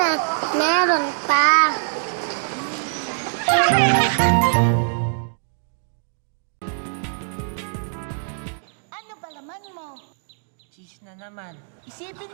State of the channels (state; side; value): silent; left; digital silence